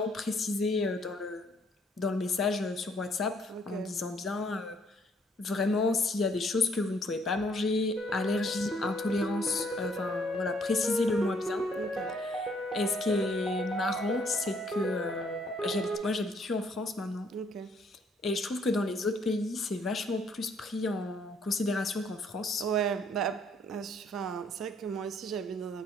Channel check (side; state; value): both; normal; correlation 0.65